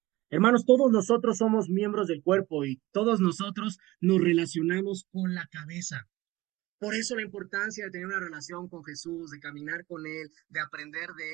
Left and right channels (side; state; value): left; quieter; 18.8 dB